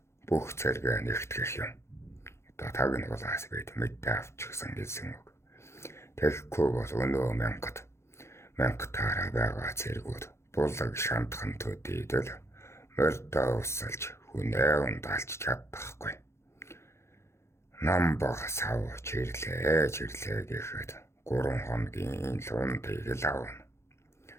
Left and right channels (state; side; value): late; right; 0.13 ms